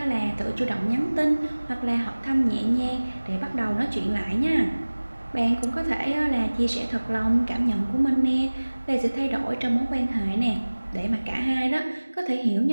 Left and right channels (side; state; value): both; inverted; correlation -1.00